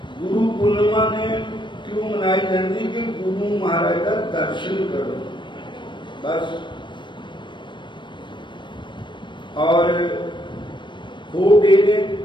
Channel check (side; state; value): right; late; 0.23 ms